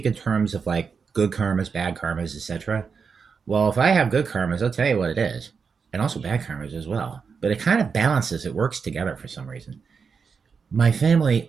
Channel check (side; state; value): left; quieter; 5.7 dB